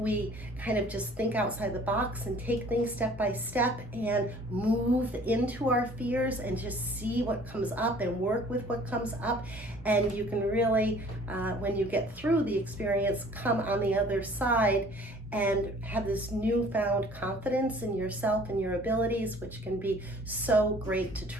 kind of just think outside the box and take things step by step and move into our fears and just see what comes up and work with what comes up. And you can really, when you get through the experience, come on the other side and have this newfound confidence in yourself and your abilities, which can be so great to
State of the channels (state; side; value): normal; both; correlation 0.52